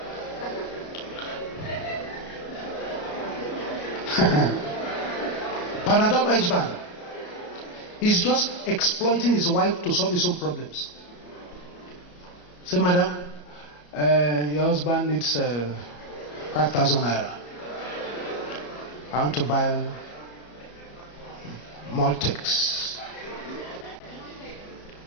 Panadol husband is just exploiting his wife to solve his own problems. Say, madam, your husband needs 5,000 naira. I want to buy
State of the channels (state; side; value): late; right; 34 ms